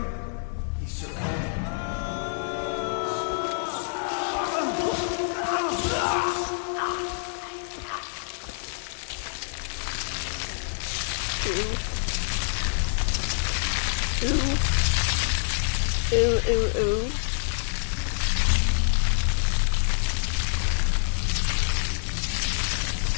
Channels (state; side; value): silent; right; 60 dB below the other